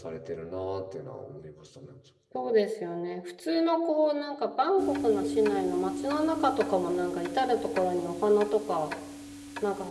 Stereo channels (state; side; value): identical; both; correlation 1.00